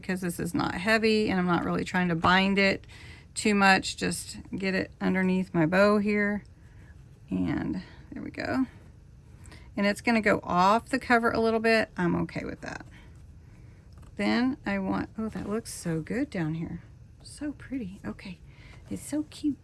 this is not heavy and I'm not really trying to bind it too much. Just get it underneath my bow here. And there we go. And it's going to go off the cover a little bit. I'm okay with that. Then I want, oh, that looks so good down here. So pretty. Okay. It's so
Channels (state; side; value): identical; both; correlation 1.00